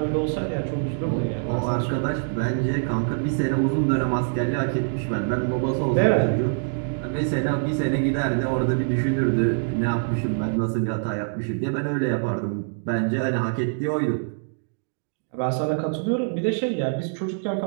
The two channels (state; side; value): silent; left; digital silence